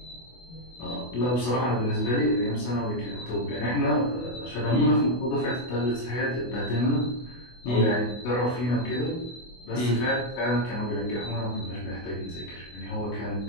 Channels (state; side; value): late; right; 24 ms